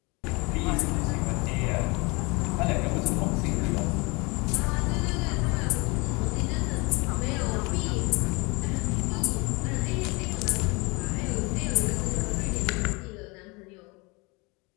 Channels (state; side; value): quieter; right; 27.1 dB